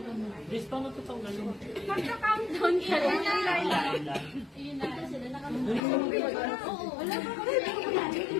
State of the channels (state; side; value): drops out; right; at 5.8 s